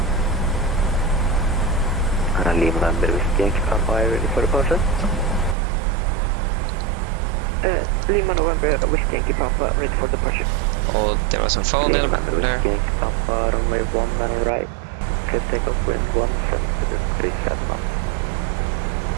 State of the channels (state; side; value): drops out; left; at 5.6 s